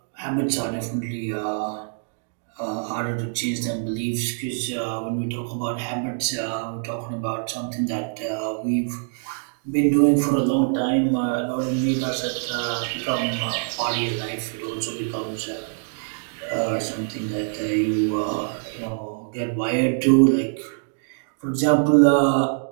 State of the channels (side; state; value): left; silent; digital silence